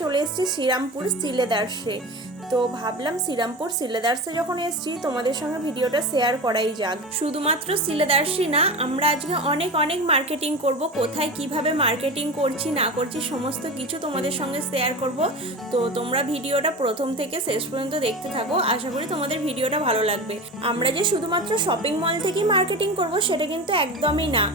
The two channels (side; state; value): both; normal; correlation 0.28